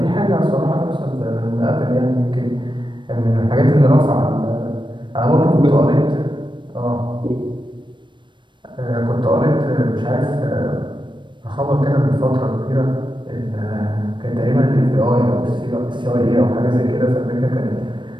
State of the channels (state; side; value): late; left; 0.23 ms